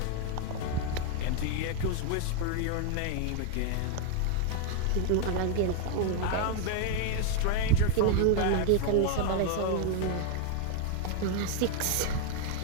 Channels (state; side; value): different; both; correlation 0.00